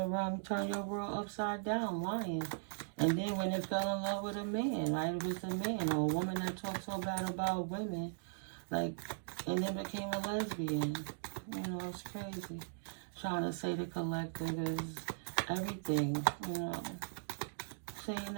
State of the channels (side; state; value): left; silent; digital silence